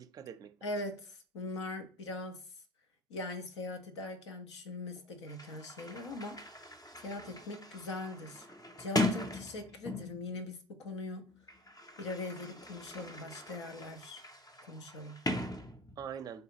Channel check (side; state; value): both; normal; correlation 0.39